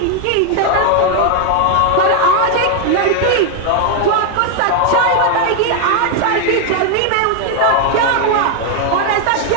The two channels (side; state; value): both; different; correlation 0.00